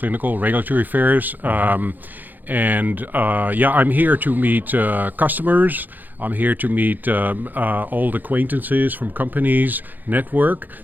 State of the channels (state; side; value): late; left; 0.086 ms